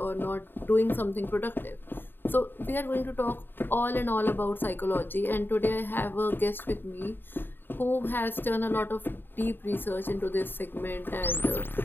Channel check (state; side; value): late; right; 0.096 ms